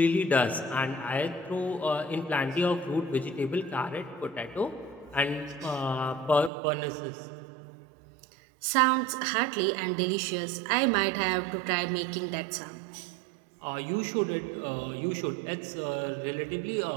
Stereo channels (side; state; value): left; drops out; at 6.5 s